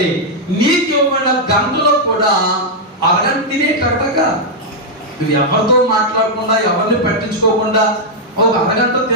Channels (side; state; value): both; normal; correlation -0.03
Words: నీకు ఇవ్వబడిన గంటలో కూడా అరగంట తినేటట్టుగా నువ్వు ఎవరితో మాట్లాడకుండా ఎవరిని పట్టించుకోకుండా ఒక అరగంట